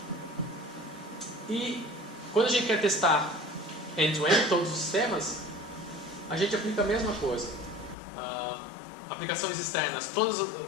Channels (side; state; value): right; drops out; at 8.0 s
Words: E quando a gente quer testar end-to-end, todos os sistemas, a gente aplica a mesma coisa. Aplicações externas, todos